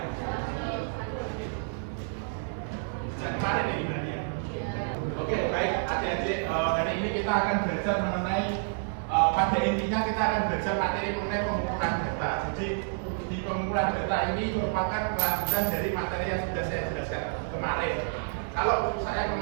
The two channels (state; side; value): silent; left; digital silence